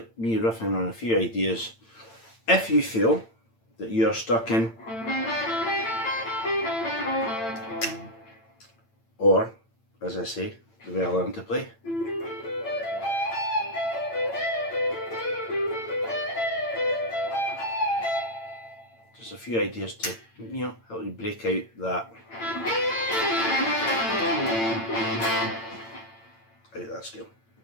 me riffing on a few ideas. If you feel that you're stuck in, or as I say, the way I learn to play, just a few ideas to, help you break out that scale.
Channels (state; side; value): late; right; 8.9 ms